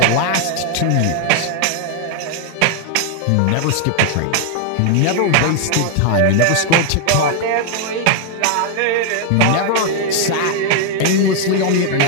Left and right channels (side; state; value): both; different; correlation 0.00